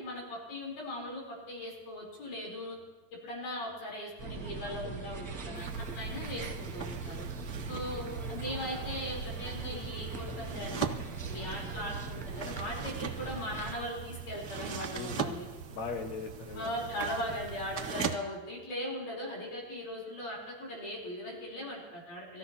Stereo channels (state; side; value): late; right; 8.7 ms